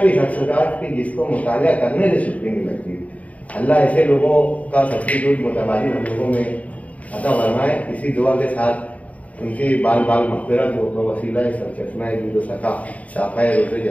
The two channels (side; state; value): right; late; 0.069 ms